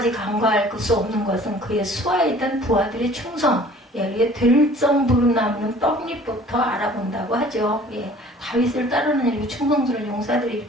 간과할 수 없는 것은 그의 수하에 있던 부하들의 충성, 예, 들정부름 나무는 떡잎부터 알아본다고 하죠. 예, 다윗을 따르는 이렇게 충성스러운 용사들이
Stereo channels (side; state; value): both; normal; correlation 0.50